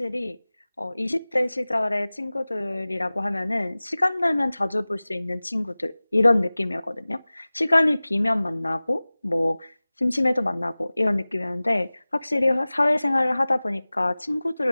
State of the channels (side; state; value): both; inverted; correlation -0.99